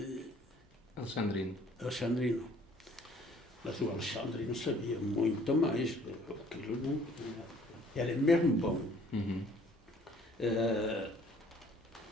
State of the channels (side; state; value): both; normal; correlation 0.57